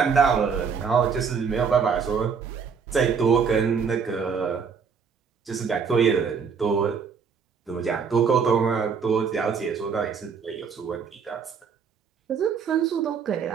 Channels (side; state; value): left; quieter; 6.1 dB